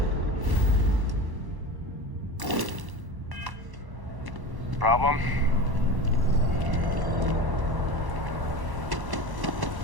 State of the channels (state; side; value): late; left; 1.1 ms